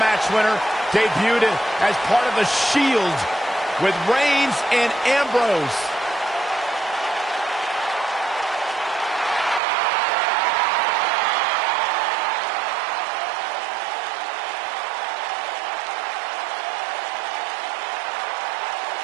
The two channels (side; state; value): left; drops out; at 9.6 s